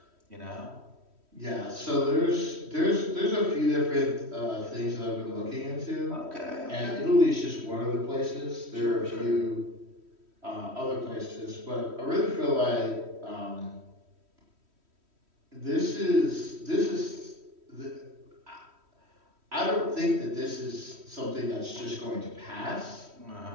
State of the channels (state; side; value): late; left; 3.1 ms